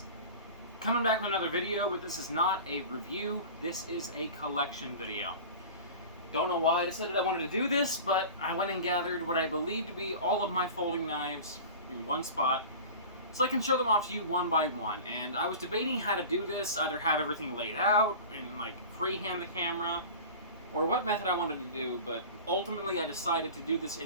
Coming back with another video, but this is not a review, this is a collection video. Don't know why I decided I wanted to do this, but I went and gathered what I believe to be all of my folding knives in one spot, so I can show them off to you one by one. And I was debating how to do this, either have everything laid out and like freehand the camera, or what method I wanted to do, but ultimately I decided to do this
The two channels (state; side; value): inverted; both; correlation -0.36